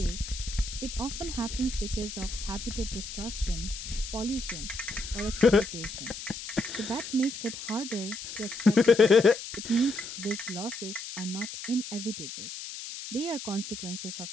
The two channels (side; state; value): left; noise; hiss, 9 dB below the sound